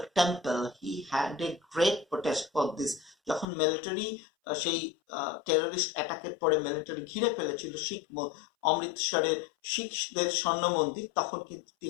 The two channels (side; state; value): right; drops out; at 3.5 s